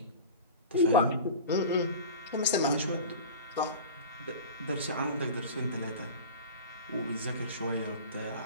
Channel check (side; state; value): both; inverted; correlation -0.34